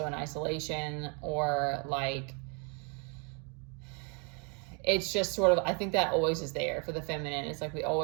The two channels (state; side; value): quieter; left; 35.6 dB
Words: in isolation, or like, it's just sort of, I think that always is there for the feminine. It's like we